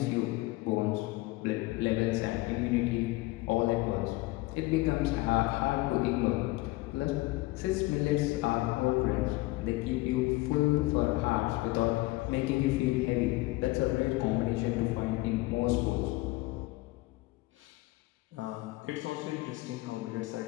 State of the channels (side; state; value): right; quieter; 20.8 dB